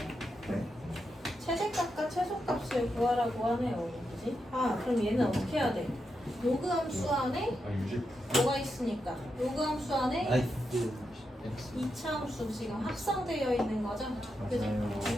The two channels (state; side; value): normal; both; correlation 0.86